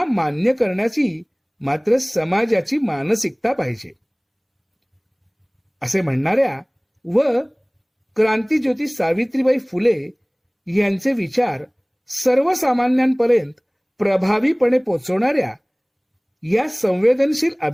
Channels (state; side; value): identical; both; correlation 1.00